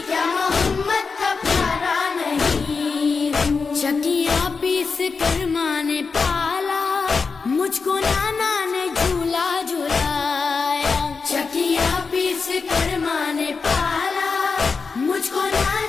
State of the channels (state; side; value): quieter; right; 4.8 dB